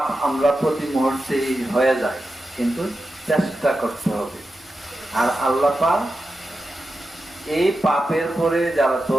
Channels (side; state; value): both; normal; correlation 0.90